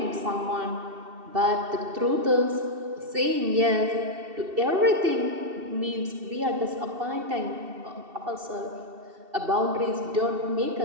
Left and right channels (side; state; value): left; late; 2.7 ms